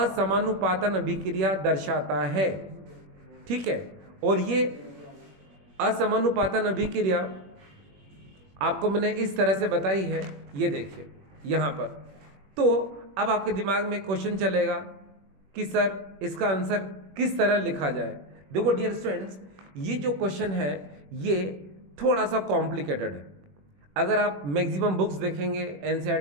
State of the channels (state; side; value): late; left; 21 ms